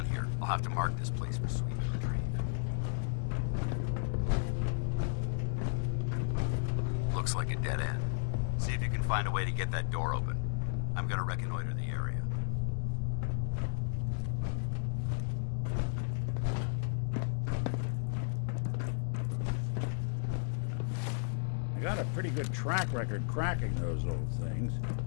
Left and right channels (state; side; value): silent; right; digital silence